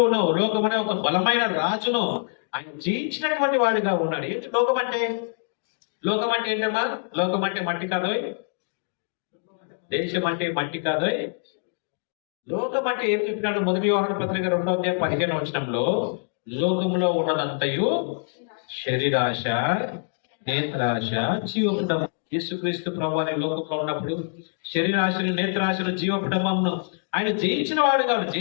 లోకమనే ఒక బలమైన రాజును ఆయన జయించినటువంటి వాడిగా ఉన్నాడు. ఏంటి లోకం అంటే? లోకం అంటే ఏంటమ్మా? లోకం అంటే మట్టి కాదు. దేశం అంటే మట్టి కాదు, లోకం అంటే ఏం చెప్పినాడు? మొదటి యోహాను పత్రిక 2:15 లోకంలో ఉన్నదంతయు శరీరాశ, నేత్రాశ, జీవపుటం. యేసుక్రీస్తు ప్రభువాని లోకంలో ఉన్నప్పుడు శరీరాశలు, నేత్రాశలు, జీవపుటమును ఆయన జయించిన వాడు కాదు,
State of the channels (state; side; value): silent; right; digital silence